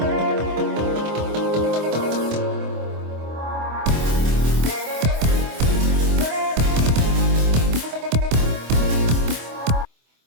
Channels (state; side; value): late; left; 25 ms